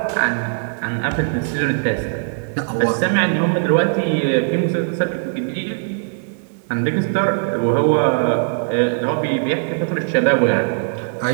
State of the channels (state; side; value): silent; left; digital silence